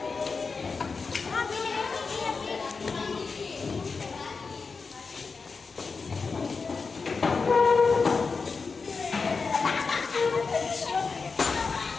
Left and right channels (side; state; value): right; quieter; 4.7 dB